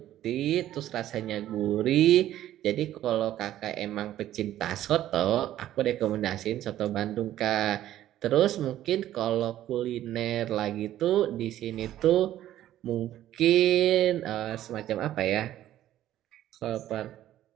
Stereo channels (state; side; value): quieter; left; 12.9 dB